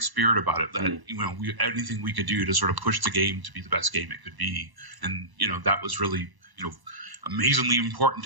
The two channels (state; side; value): late; left; 1.0 ms